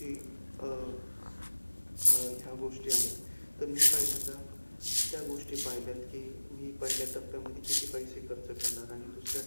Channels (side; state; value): both; inverted; correlation -1.00